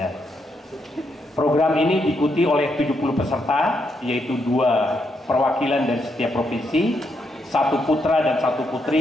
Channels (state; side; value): normal; both; correlation 0.79